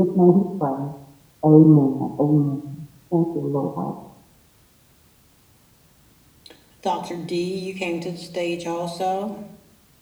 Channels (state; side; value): identical; both; correlation 1.00